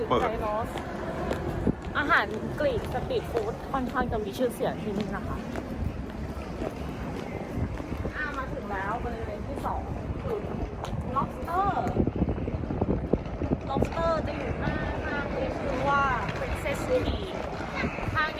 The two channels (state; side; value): identical; both; correlation 1.00